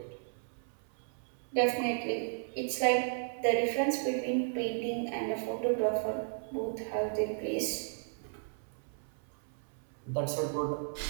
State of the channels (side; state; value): left; silent; 55 dB below the other